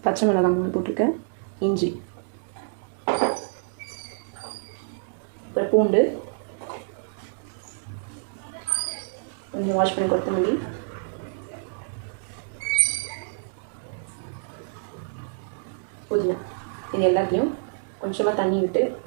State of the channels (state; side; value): silent; left; digital silence